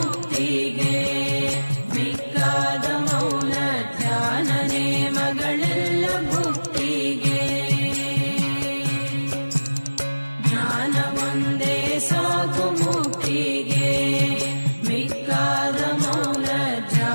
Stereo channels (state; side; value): inverted; both; correlation -1.00